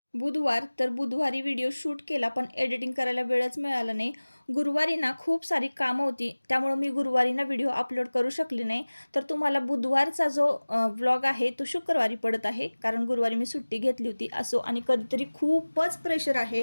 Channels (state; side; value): inverted; both; correlation -1.00